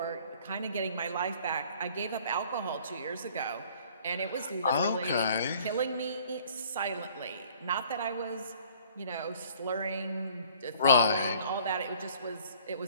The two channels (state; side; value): inverted; both; correlation -0.55